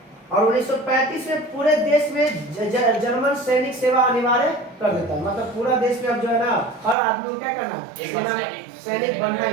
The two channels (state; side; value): drops out; left; at 7.0 s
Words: और 1935 में पूरे देश में जर्मन सैनिक सेवा अनिवार्य कर देता है। मतलब पूरा देश में अब जो है ना हर आदमी को क्या करना है? सैनिक बनना